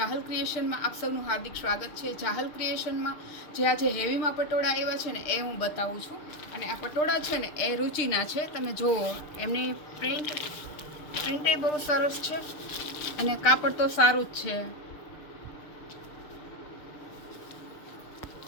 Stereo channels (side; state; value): right; late; 6.7 ms